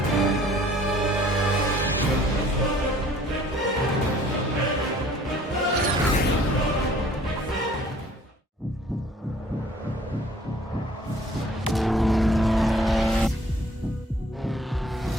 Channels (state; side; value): normal; both; correlation 0.56